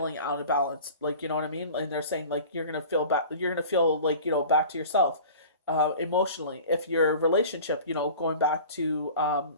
out of balance, like, you know what I mean? And they're saying like you're gonna feel like back to yourself emotionally. If your relationship, going back to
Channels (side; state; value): both; inverted; correlation -0.40